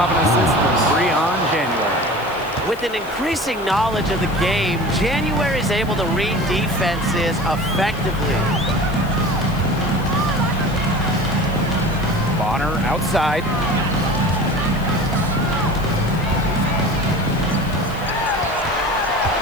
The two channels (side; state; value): left; noise; hiss, 21 dB below the sound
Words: an assist from Breon January. With an increasing knowledge of the game, January is able to read defenses effectively. Bonner outside.